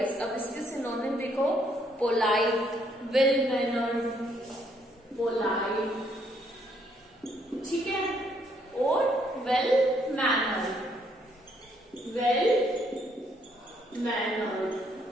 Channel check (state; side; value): normal; both; correlation 0.70